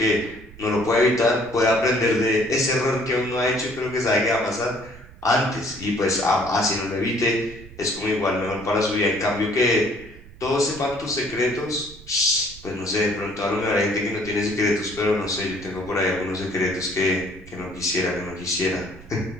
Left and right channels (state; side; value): noise; right; rumble, 19 dB below the sound